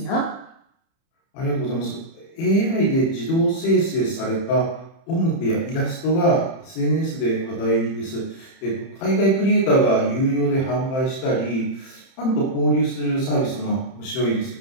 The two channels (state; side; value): late; right; 30 ms